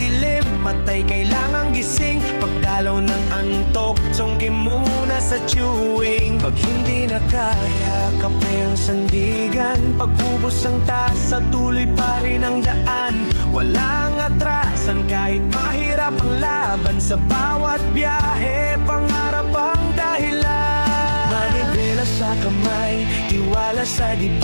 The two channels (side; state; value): both; inverted; correlation -1.00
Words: matay kailangang gising. Pagdalaw ng antok, sungki muna sa chewing. Pag hindi na kaya, kape ang sandigan. Pag-ubos ang tasa, tuloy pa rin ang daan. Walang atrasan kahit mahirap ang laban. Sa bawat biyahe, pangarap ang dahilan. Manibela sa kamay, tiwala sa